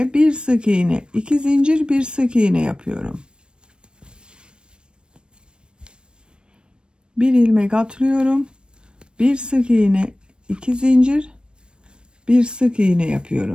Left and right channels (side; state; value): left; late; 0.054 ms